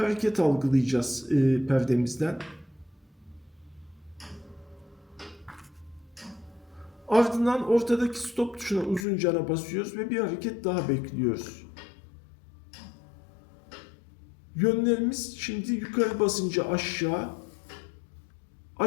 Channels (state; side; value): drops out; right; at 9.1 s